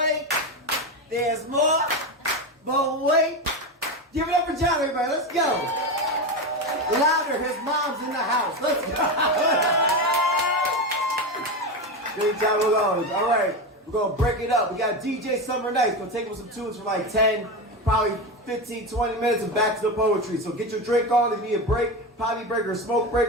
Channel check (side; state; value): both; normal; correlation 0.18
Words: there's more. But wait. Give it up for John, everybody. Let's go. Louder, his mom's in the house. Let's go. Good job, we're going. All right, we're going to break it up. We got DJ Summer Nights. Going to take up some tunes for like 10, probably 15, 20 minutes and back to the poetry. So get your drink on. If you need a break, potty break or smoke